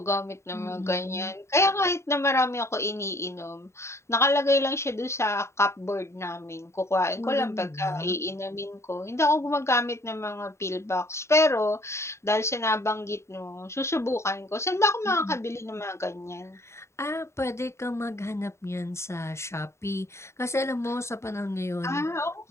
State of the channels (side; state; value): right; late; 0.13 ms